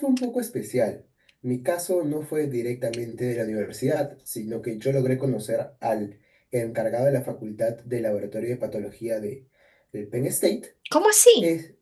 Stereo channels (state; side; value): identical; both; correlation 1.00